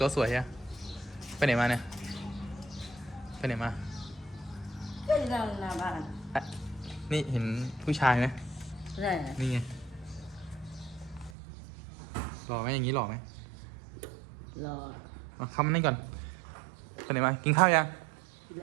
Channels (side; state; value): left; drops out; at 11.3 s